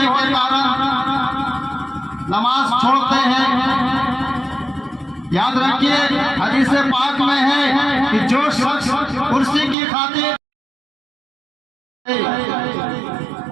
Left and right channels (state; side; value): drops out; left; at 9.8 s